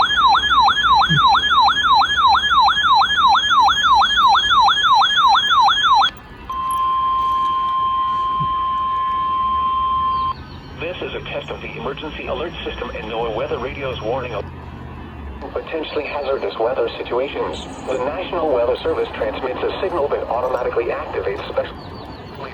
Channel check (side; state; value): both; identical; correlation 1.00